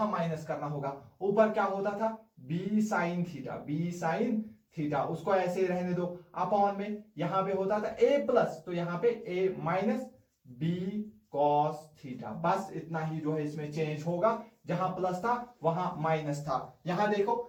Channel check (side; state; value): both; identical; correlation 1.00